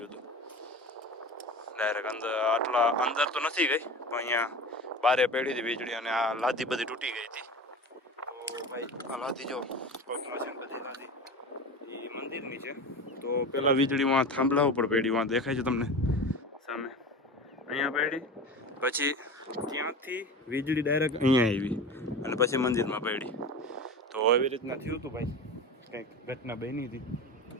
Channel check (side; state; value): both; normal; correlation 0.31